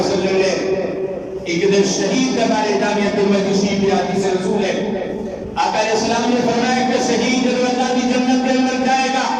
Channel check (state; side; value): identical; both; correlation 1.00